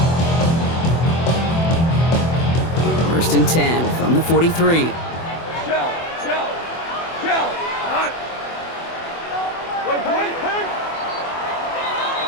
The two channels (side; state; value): right; late; 24 ms